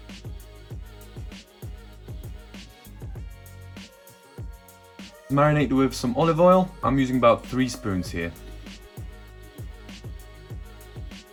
Marinate with some olive oil. I'm using about 3 spoons here.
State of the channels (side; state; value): both; identical; correlation 1.00